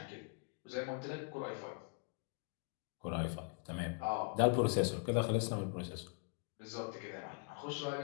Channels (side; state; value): right; quieter; 39.6 dB